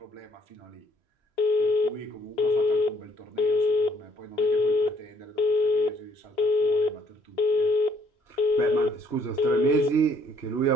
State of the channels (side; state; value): right; late; 3.1 ms